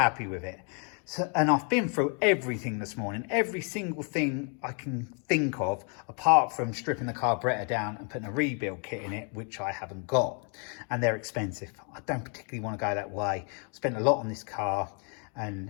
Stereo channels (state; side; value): quieter; right; 39.1 dB